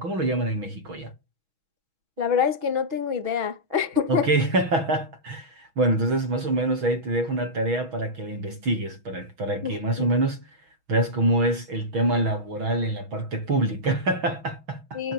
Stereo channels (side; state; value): left; late; 6.2 ms